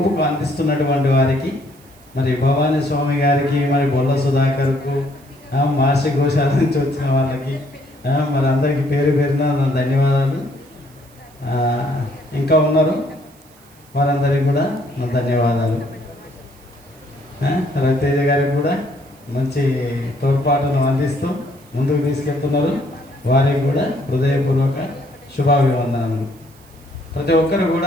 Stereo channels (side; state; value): right; noise; hiss, 28 dB below the sound